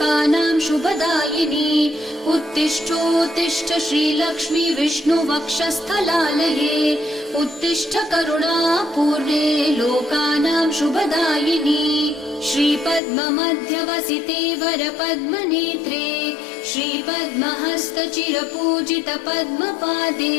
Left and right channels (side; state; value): right; drops out; at 13.0 s